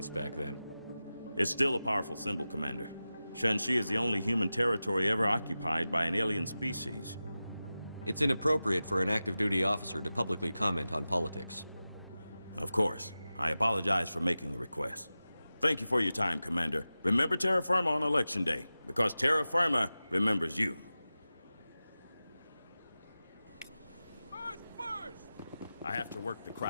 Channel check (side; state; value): both; inverted; correlation -0.95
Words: back then. It's still a powerful symbol, Commander. Shanxi is the only human territory ever occupied by an alien species. It's inappropriate for an active duty officer to publicly comment on politics. Of course. I apologize for making the request. Thank you for your time, Commander. Remember Terra Firma on Election Day, because Terra Firma remembers you. I have to work the